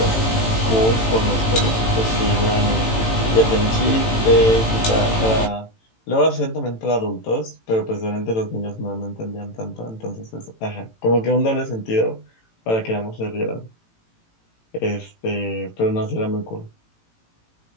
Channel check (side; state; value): right; late; 18 ms